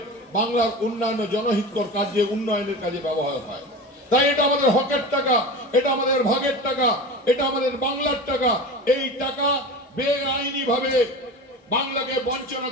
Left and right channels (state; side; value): normal; both; correlation 0.31